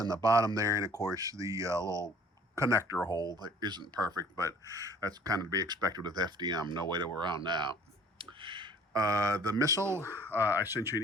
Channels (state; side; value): normal; both; correlation 0.53